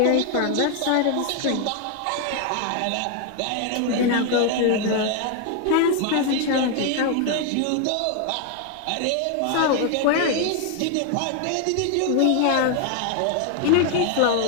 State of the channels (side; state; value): both; different; correlation 0.01